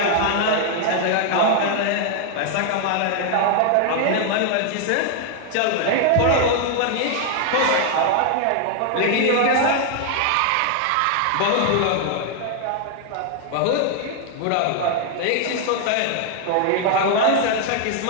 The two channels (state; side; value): different; both; correlation 0.00